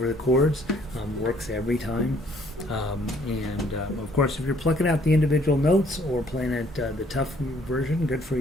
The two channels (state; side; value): normal; both; correlation 0.63